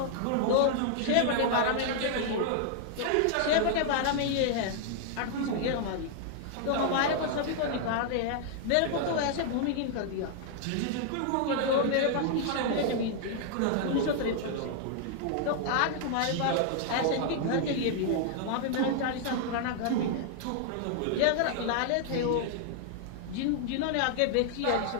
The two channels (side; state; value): both; different; correlation -0.01